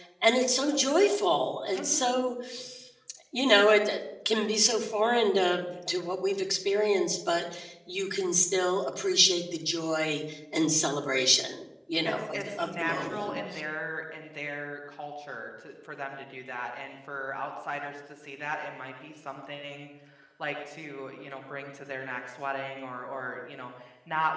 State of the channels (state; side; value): identical; both; correlation 1.00